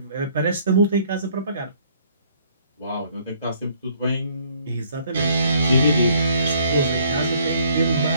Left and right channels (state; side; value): inverted; both; correlation -0.63